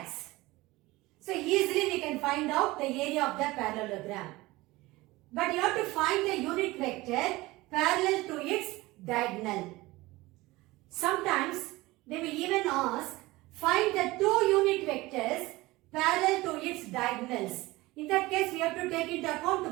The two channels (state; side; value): quieter; left; 20.2 dB